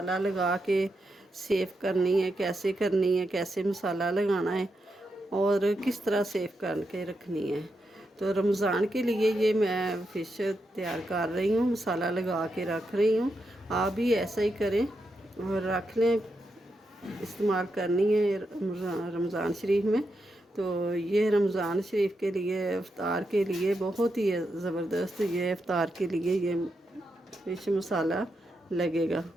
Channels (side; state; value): both; normal; correlation 0.85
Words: लगा के सेव करनी है। कैसे करनी है, कैसे मसाला लगाना है और किस तरह सेव करके रखनी है। तो रमज़ान के लिए ये मैं फ़िश तैयार कर रही हूँ, मसाला लगा के रख रही हूँ। आप भी ऐसा ही करें और रख लें। इस्तेमाल करनी है रमज़ान शरीफ में। तो ये रमज़ान शरीफ के लिए इफ़्तार के लिए बहुत ही ज़बरदस्त, ये इफ़्तार के लिए ये फ़िश मसाला लगेगा।